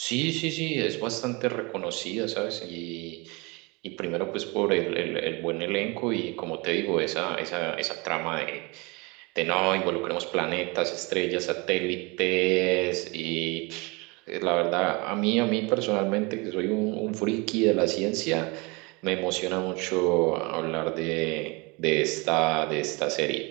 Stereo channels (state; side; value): quieter; left; 27.3 dB